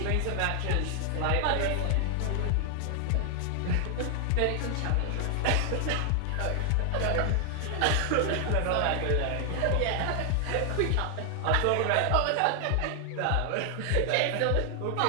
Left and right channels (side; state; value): both; different; correlation 0.00